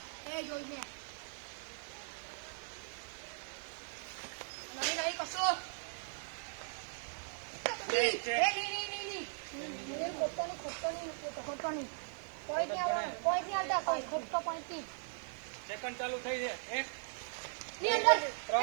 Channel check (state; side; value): silent; left; digital silence